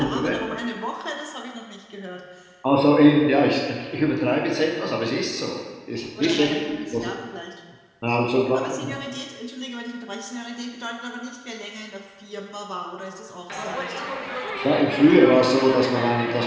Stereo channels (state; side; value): identical; both; correlation 1.00